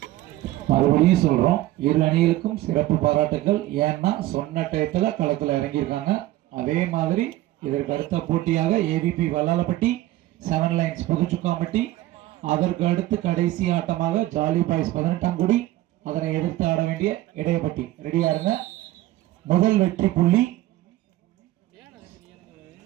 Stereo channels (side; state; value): left; quieter; 16.1 dB